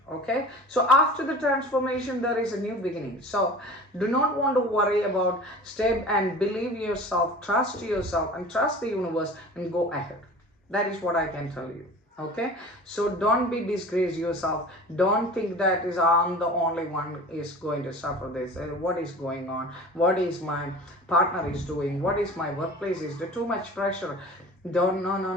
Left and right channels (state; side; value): normal; both; correlation 0.39